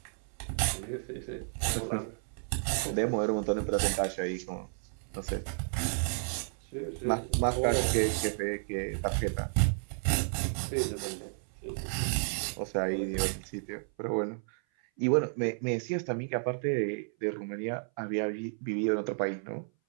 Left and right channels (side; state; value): left; silent; 56 dB below the other